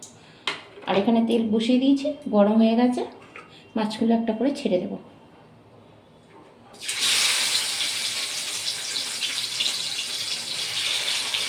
আর এখানে তেল বসিয়ে দিয়েছি, গরম হয়ে গেছে। মাছগুলো একটা করে ছেড়ে দেব।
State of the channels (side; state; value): both; identical; correlation 1.00